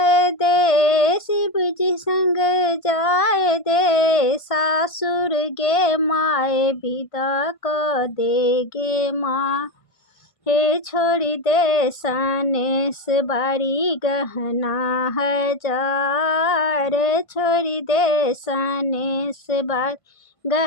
दे, शिव जी संग जाए दे। सासुर गे माए विदा को देगे माँ। हे छोड़ी दे सनेस बारी गहना हजार, छोड़ी दे सनेस बारी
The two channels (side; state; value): right; late; 1.5 ms